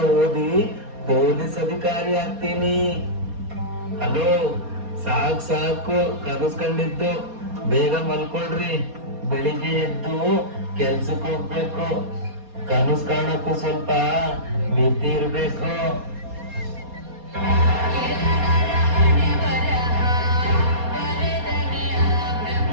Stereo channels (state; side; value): late; left; 4.2 ms